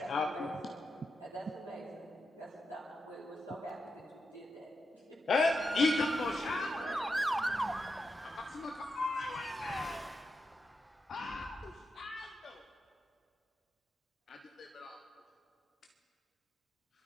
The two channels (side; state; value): both; normal; correlation 0.87